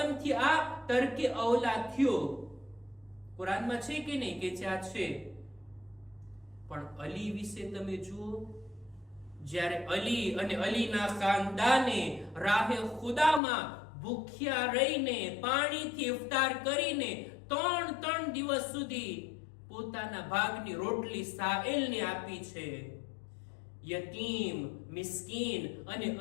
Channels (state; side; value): drops out; right; at 13.4 s